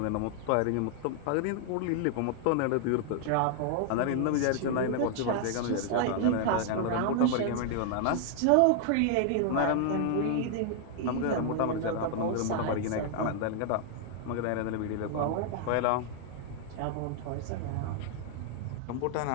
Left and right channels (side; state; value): both; different; correlation 0.00